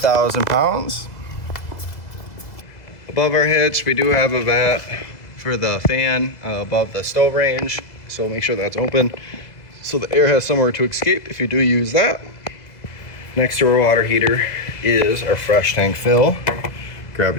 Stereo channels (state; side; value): late; right; 2.0 ms